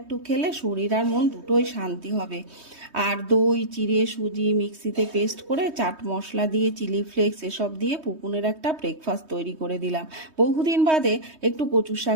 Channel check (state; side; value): late; left; 3.2 ms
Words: খেলে শরীর আর মন দুটোই শান্তি হবে। আর দই চিড়ে সুজি মিক্সিতে পেস্ট করে চাট মশলা দিয়ে চিলি ফ্লেক্স এসব দিয়ে পুকুনের একটা ব্রেকফাস্ট তৈরি করে দিলাম। বহুদিন বাদে একটু কচুর